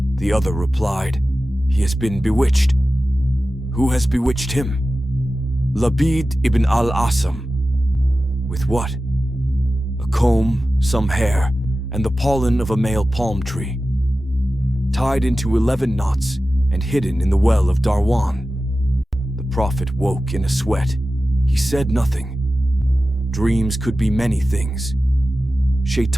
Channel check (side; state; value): both; normal; correlation 0.94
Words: The other replied, "He has been bewitched." "Who has bewitched him?" "Labid ibn al-Asam." "With what?" "A comb, some hair, and the pollen of a male palm tree. Tied into 11 knots and hidden in the well of Dharwan." The Prophet woke in a sweat. He said nothing. Dreams could be many things.